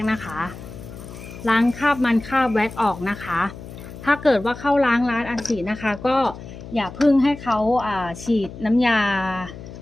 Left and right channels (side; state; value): left; noise; hum, 14 dB below the sound